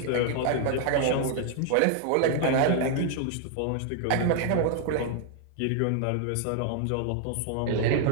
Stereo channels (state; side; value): different; both; correlation 0.00